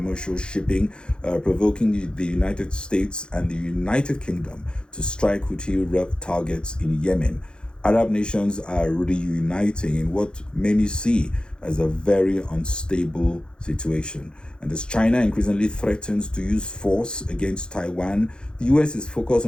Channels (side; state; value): right; late; 0.050 ms